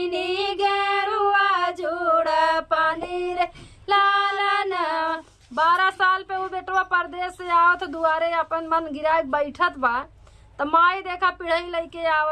गेड़ुआ जोड़ा पानी रे लालनवा। 12 साल पे वो बेटवा परदेश से आवत दुआरे अपन मन गिरा बैठत बा। तो माई देखा पिढ़ई लेके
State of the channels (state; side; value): identical; both; correlation 1.00